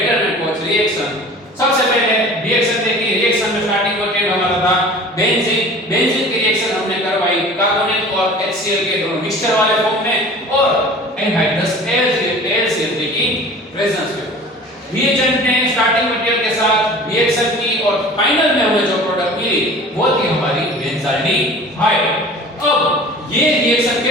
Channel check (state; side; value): normal; both; correlation 0.42